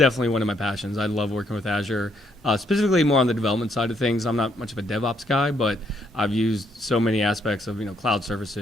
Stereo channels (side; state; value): both; normal; correlation 0.72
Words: one of my passions. I love working with Azure, specifically more on the development side of things. I'm not much of a DevOps guy, but I've used so many aspects of cloud